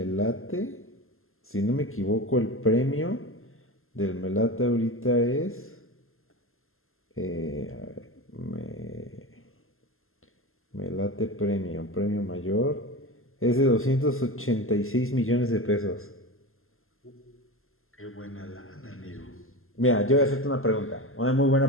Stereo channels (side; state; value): right; late; 0.61 ms